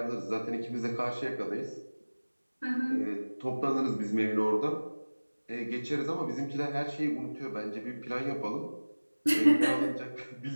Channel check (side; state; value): both; inverted; correlation -1.00